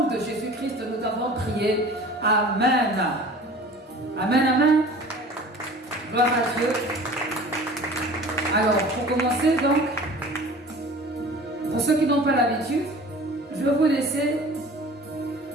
de Jésus-Christ, nous t'avons prié. Amen. Amen, amen. Gloire à Dieu. Alors, pour commencer, donc, pour ceux qui n'ont pas l'habitude, je vais vous laisser,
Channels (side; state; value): both; normal; correlation 0.43